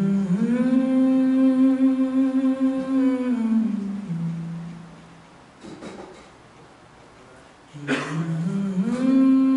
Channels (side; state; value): both; identical; correlation 1.00